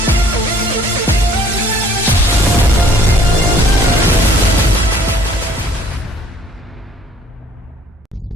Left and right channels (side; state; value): both; normal; correlation 0.57